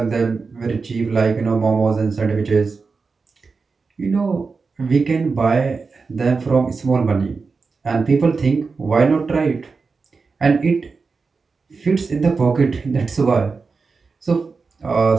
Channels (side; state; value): left; quieter; 4.6 dB